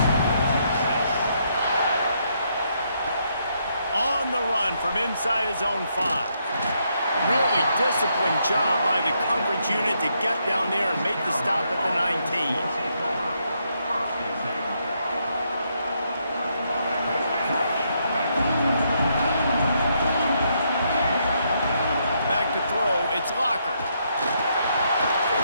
On the run from inside his own 5. Really disciplined job by the coverage unit to get down there and make the stop at the 19. Back to throw, it's Locker.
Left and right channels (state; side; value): inverted; both; correlation -0.76